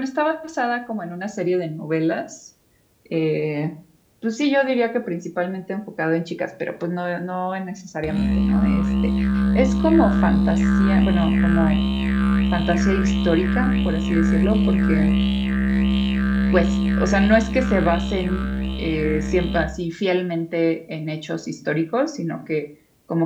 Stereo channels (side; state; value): both; identical; correlation 1.00